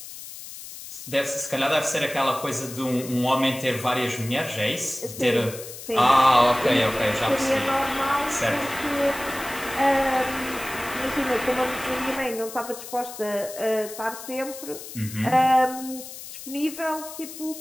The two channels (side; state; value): left; noise; hiss, 12 dB below the sound